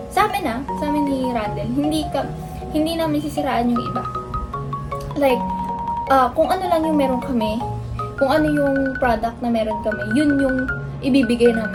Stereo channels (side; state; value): both; identical; correlation 1.00